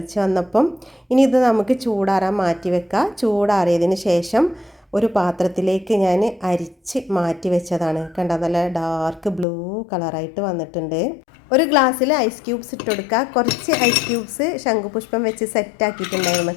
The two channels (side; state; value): right; drops out; at 9.5 s